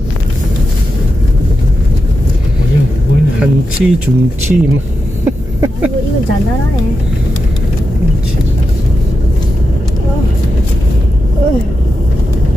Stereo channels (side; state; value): both; normal; correlation 0.88